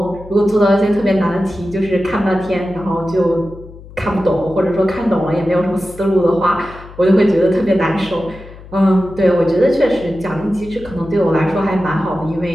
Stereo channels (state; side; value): noise; left; hum, 18 dB below the sound